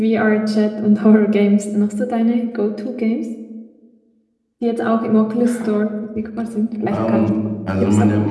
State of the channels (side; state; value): both; identical; correlation 1.00